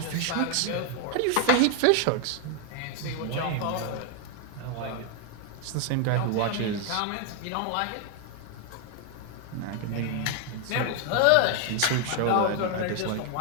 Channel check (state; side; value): different; both; correlation 0.00